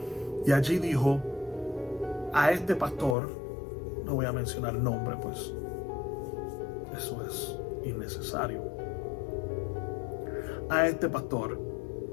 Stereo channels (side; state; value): right; drops out; at 3.2 s